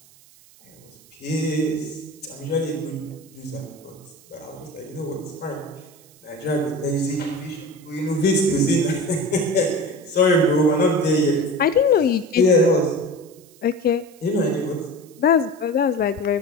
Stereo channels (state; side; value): noise; right; hiss, 26 dB below the sound